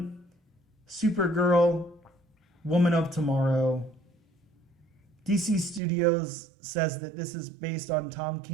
Supergirl, Woman of Tomorrow. DC Studios says that this is based on Tom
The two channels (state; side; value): drops out; left; at 5.8 s